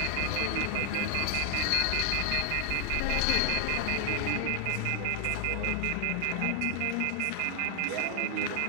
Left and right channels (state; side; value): different; both; correlation 0.00